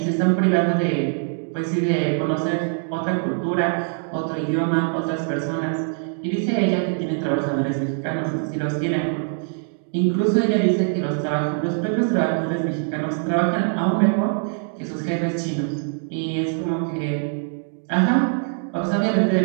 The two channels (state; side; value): silent; left; 61 dB below the other